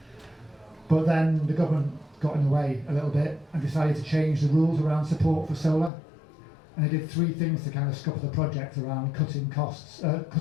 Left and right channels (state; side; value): drops out; right; at 5.9 s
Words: But then the government got in the way a little bit and decided to change the rules around support for solar. And they did 3 things to kind of scupper the project around cutting costs,